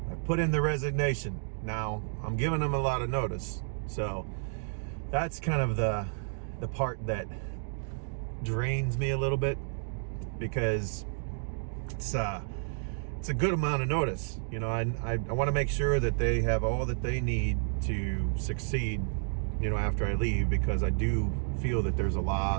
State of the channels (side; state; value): left; silent; digital silence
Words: I put in the resignation. Now, I'm giving him a lot of notice, so that's kind of the part that drains me a little bit, because it's a good amount of notice. You know, I want to make sure that they have all that they need to succeed, you know, after I leave, because I do feel that there's a